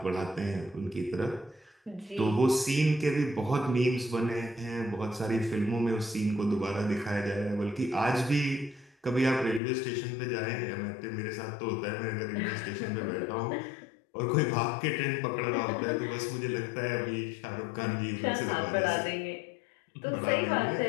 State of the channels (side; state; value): right; drops out; at 9.6 s